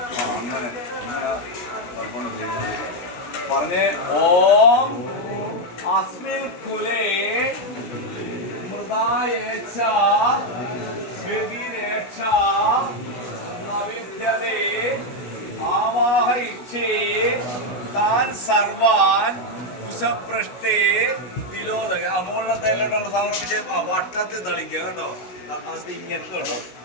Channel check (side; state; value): right; late; 17 ms